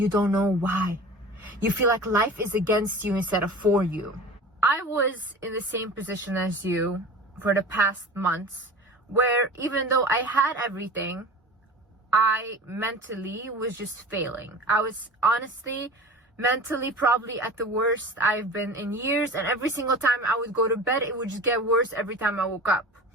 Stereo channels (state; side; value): normal; both; correlation 0.36